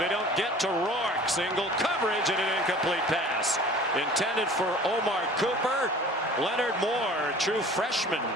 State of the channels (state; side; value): normal; both; correlation 0.45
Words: don't get to Rourke. Single coverage and an incomplete pass. Intended for Omar Cooper. Leonard Moore, true freshman,